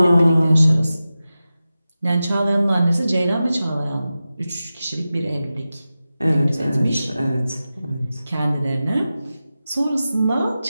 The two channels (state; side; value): inverted; both; correlation -0.94